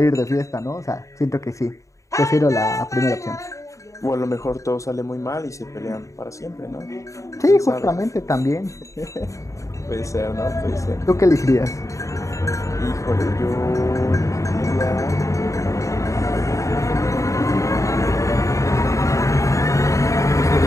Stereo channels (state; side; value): late; right; 0.15 ms